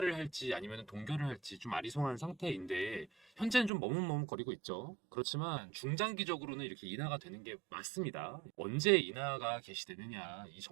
할지 아니면 동결을 할지 좀 아리송한 상태인데 현재는 좀 머뭇머뭇거리고 있죠. 그렇지만 중장기적으로는 이렇게 인하가 되는 게 맞습니다. 언제 인하가 개시되느냐 이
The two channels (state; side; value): drops out; left; at 3.7 s